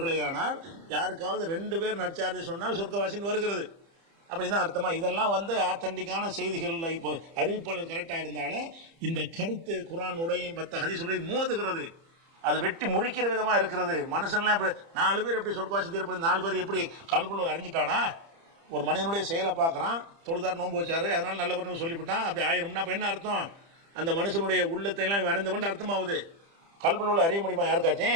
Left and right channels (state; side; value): late; left; 30 ms